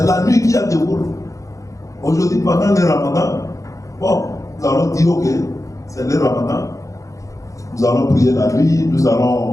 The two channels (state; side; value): late; right; 0.16 ms